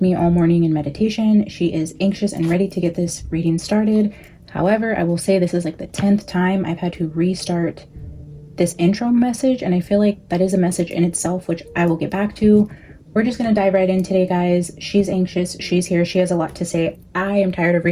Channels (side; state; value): both; identical; correlation 1.00